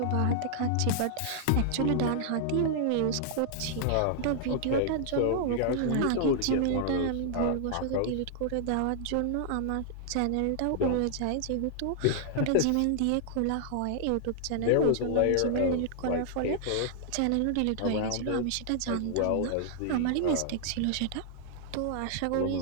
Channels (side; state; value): both; different; correlation -0.01